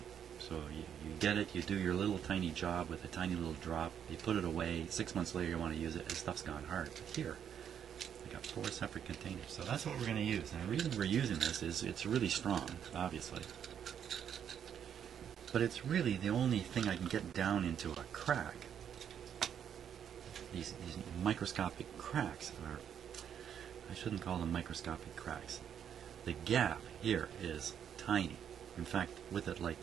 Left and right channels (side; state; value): left; quieter; 8.7 dB